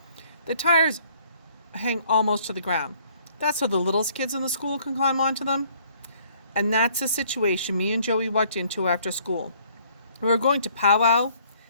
The tires hang almost to the ground. That's so the littlest kids in the school can climb onto them. And that's the situation me and Joey walked into after school. We were going to powwow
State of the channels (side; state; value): both; inverted; correlation -0.62